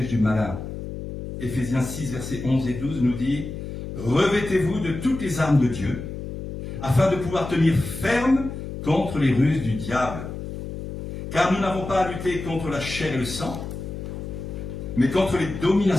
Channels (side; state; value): left; noise; hum, 8 dB below the sound